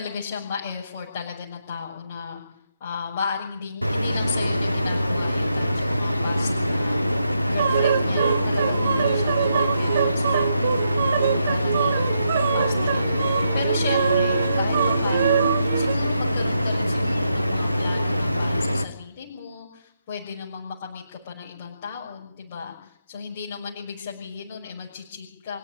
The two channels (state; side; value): inverted; both; correlation -0.81